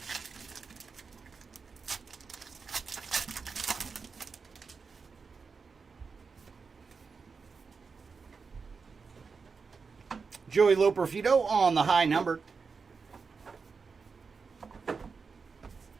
Joey Loperfido on the high numbered.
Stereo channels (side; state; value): left; quieter; 5.0 dB